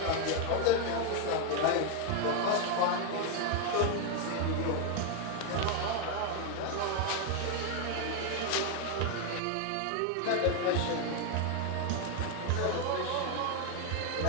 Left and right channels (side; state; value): both; different; correlation 0.01